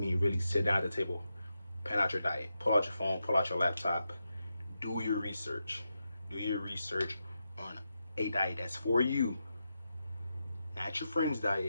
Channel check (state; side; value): inverted; both; correlation -0.87